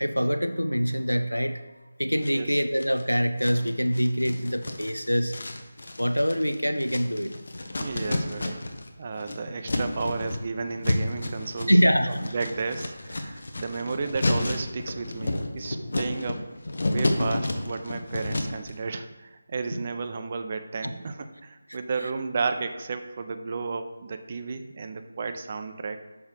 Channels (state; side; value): inverted; both; correlation -0.96